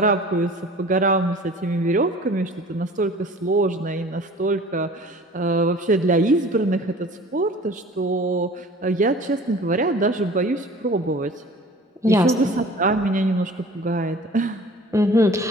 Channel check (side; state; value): both; normal; correlation 0.45